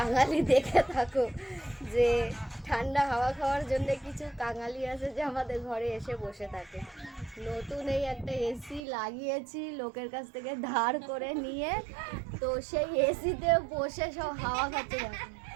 দেখে থাকো যে ঠান্ডা হাওয়া খাওয়ার জন্য কিছু কাঙালি আছে যে আমাদের ঘরে এসে বসে থাকে। নতুন এই একটা এসি লাগিয়েছি লোকের কাছ থেকে ধার করে নিয়ে, তো সেই এসিতে বসে সব হাওয়া খাচ্ছে। দেখো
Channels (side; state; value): left; drops out; at 8.8 s